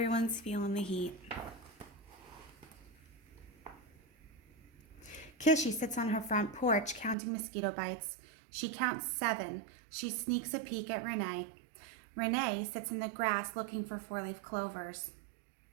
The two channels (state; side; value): drops out; left; at 7.2 s